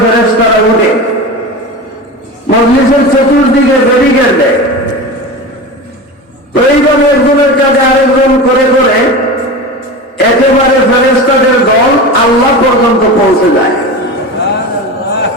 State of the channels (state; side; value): normal; both; correlation 0.28